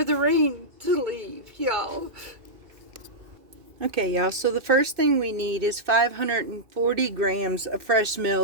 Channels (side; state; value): left; late; 2.3 ms